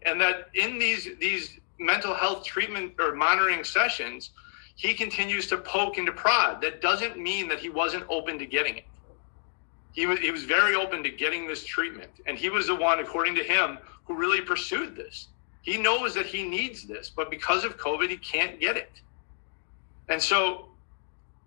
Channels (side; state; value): right; silent; digital silence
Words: and that in these mental health treatment or monitoring sessions, he continues to poke and to prod, that doesn't mean that he wasn't open to getting it. He was very open to getting this treatment. And he was the one, according to him, who really pursued this. He knows that he needs this, but because of COVID, he can't get it. And so,